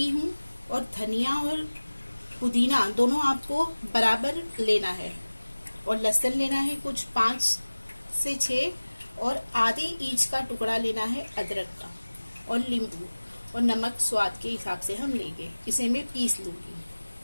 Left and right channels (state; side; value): inverted; both; correlation -1.00